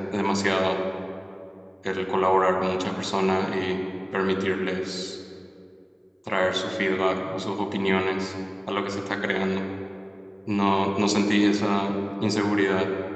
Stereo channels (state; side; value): identical; both; correlation 1.00